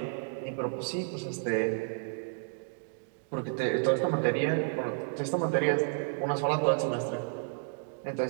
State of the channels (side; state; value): left; silent; digital silence